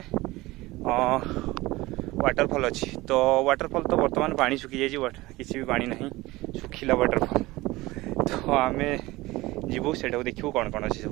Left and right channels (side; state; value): left; quieter; 19.8 dB